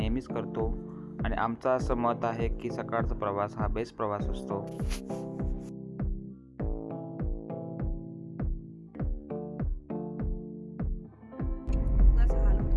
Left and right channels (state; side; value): identical; both; correlation 1.00